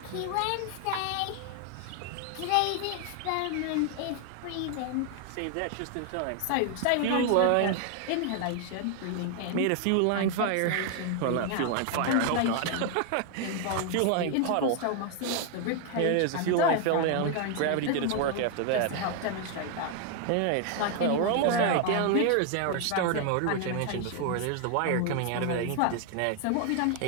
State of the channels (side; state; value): both; different; correlation 0.00